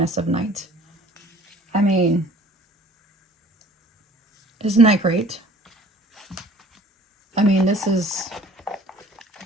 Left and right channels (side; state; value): both; normal; correlation 0.51